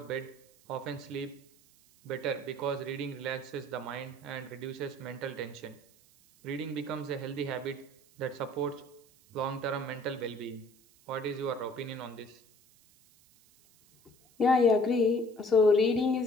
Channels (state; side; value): noise; right; hiss, 29 dB below the sound